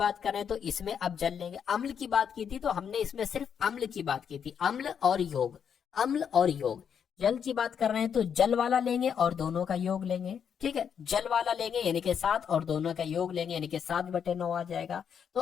करें तो इसमें अब जल लेंगे, अम्ल की बात की थी तो हमने इसमें सिर्फ अम्ल की बात की थी, अम्ल और योग, अम्ल और योग। जल की बात कर रहे हैं तो जल वाला लेंगे और दोनों का योग लेंगे, ठीक है, जल वाला लेंगे यानी कि 7 और दोनों का योग लेंगे यानी कि 7/9 आ जाएगा। तो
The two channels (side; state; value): right; quieter; 7.7 dB